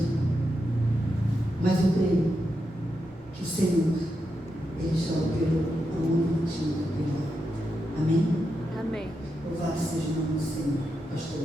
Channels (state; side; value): normal; both; correlation 0.86